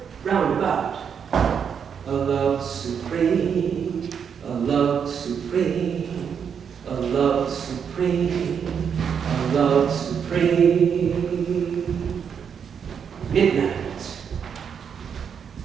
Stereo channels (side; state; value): left; quieter; 7.3 dB